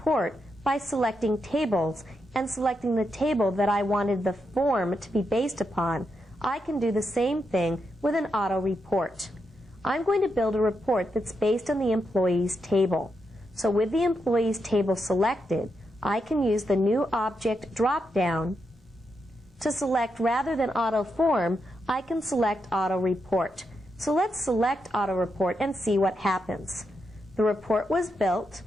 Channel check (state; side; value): normal; both; correlation 0.84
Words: by selecting tables and selecting the table that I wanted the form to be based upon, I can do the same thing with an auto report. I'm going to build a report that's based on the employees table. So with the employees table selected, I can use the new object drop-down to select, rather than auto form, I can select auto report. So let's select auto report and see what happens. The report was built,